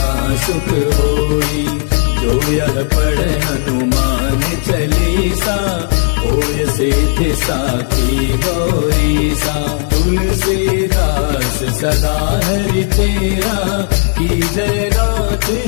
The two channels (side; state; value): right; silent; 63 dB below the other